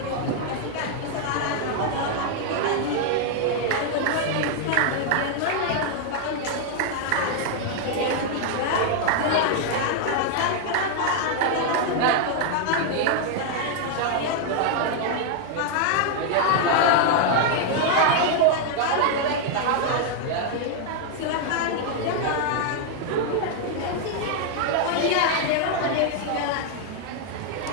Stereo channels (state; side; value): different; both; correlation 0.00